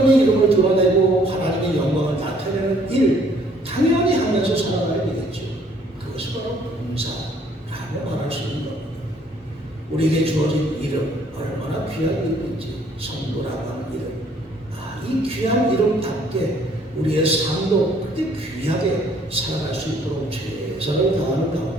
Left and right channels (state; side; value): normal; both; correlation 0.61